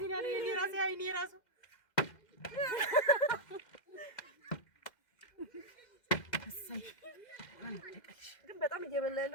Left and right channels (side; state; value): right; late; 2.1 ms